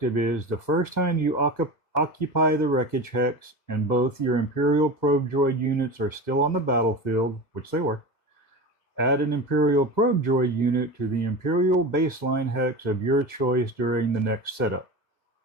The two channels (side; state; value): right; late; 2.0 ms